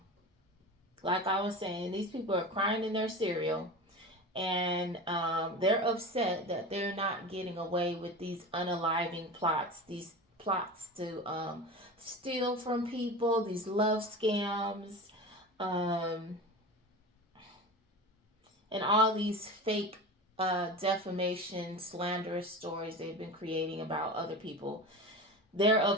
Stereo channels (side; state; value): both; normal; correlation 0.30